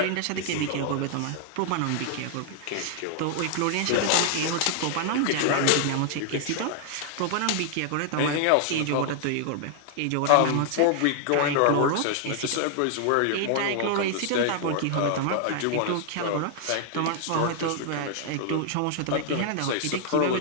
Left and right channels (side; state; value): both; different; correlation 0.00